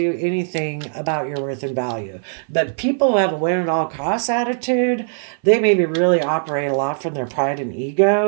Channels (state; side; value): silent; left; 58 dB below the other